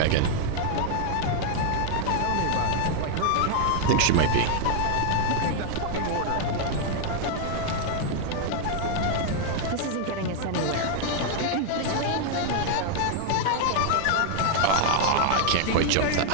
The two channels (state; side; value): different; both; correlation 0.00